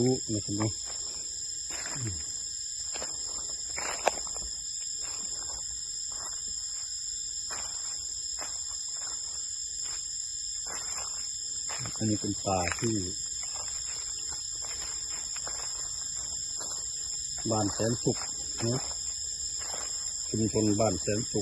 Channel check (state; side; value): identical; both; correlation 1.00